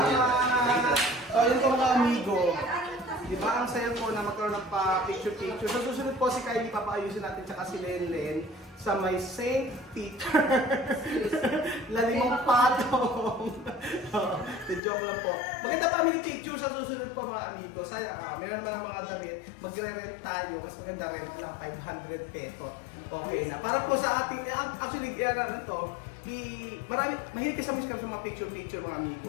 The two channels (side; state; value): right; drops out; at 14.8 s